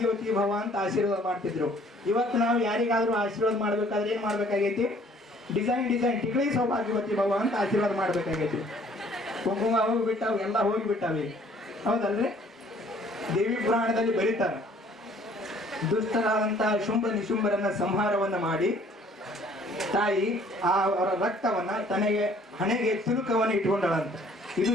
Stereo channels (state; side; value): normal; both; correlation 0.58